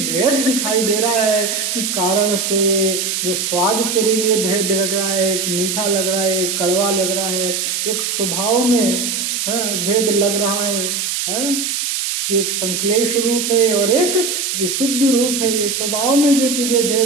भेद दिखाई दे रहा है कि कारण से जो स्वाद तेरे लिए भेद लग रहा है, एक मीठा लग रहा है, एक कड़वा लग रहा है, एक स्वभाव में भेद लग रहा है, कि एक संक्लेश रूप है और एक विशुद्ध रूप है। ये स्वभाव में जो तुझे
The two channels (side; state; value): right; noise; hiss, 1 dB below the sound